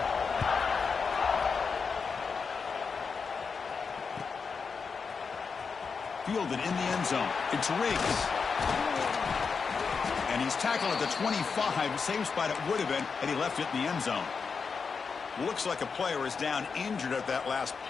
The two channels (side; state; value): right; quieter; 5.4 dB